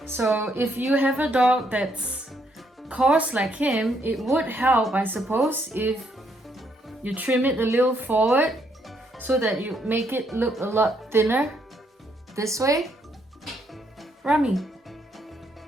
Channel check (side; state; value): both; normal; correlation 0.73